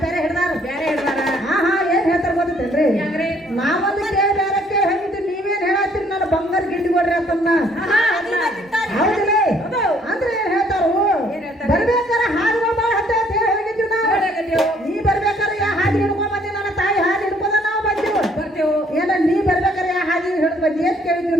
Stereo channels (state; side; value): normal; both; correlation 0.63